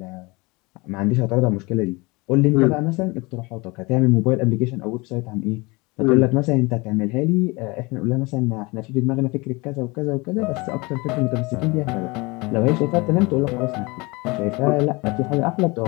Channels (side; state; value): right; quieter; 25.3 dB